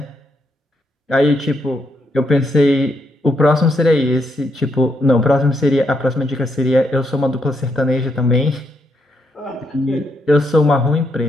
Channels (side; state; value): both; normal; correlation 0.78